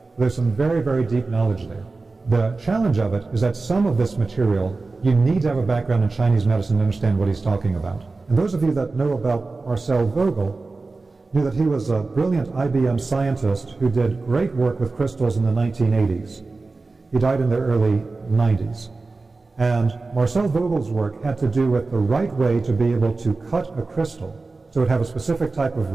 There's some very, very deep knowledge there. The challenge of it is that some of this material, you need to have a background in Chinese medicine to understand what he's talking about. And those of you that know about Marcel Vogel knew that he was a brilliant IBM scientist who did great work with crystals in the 1980s. He died in the early 90s. And Marcel Vogel's work had to do with the right way to be able to cut a crystal so it would have a specific type of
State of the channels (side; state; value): left; quieter; 3.7 dB